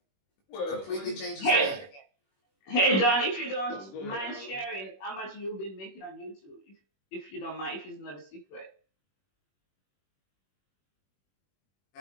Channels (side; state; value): right; late; 21 ms